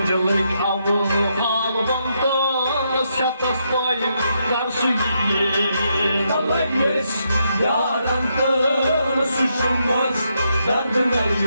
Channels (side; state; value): both; inverted; correlation -0.79